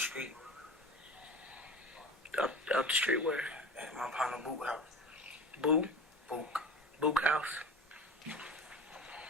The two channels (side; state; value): both; normal; correlation 0.34